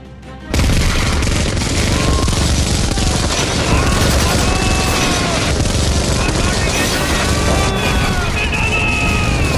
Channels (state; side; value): identical; both; correlation 1.00